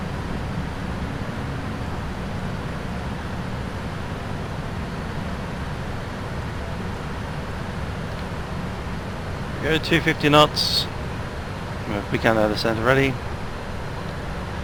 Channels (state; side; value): identical; both; correlation 1.00